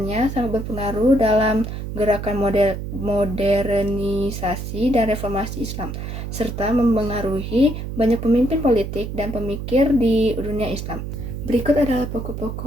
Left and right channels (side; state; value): right; noise; hum, 6 dB below the sound